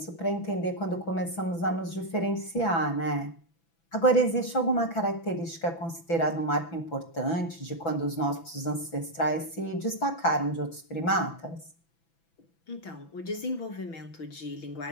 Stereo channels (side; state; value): right; late; 6.0 ms